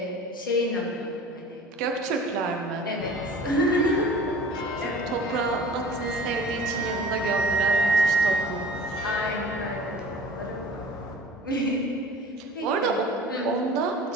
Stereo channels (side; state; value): both; normal; correlation 0.43